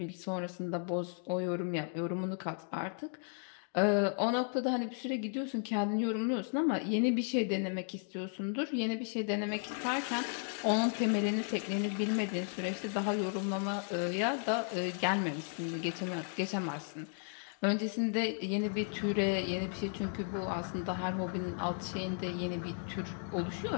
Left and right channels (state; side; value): silent; right; 55 dB below the other